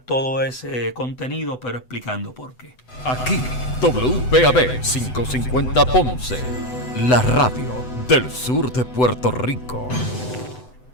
ese contenido, pero explicando por qué. Aquí, WPAB 550 Ponce, la radio del sur de Puerto Rico.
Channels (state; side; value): late; right; 8.0 ms